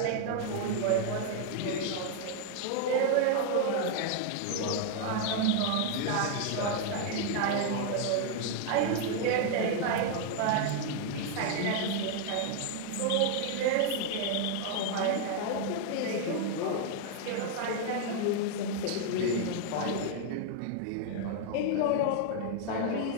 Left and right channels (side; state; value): both; different; correlation 0.00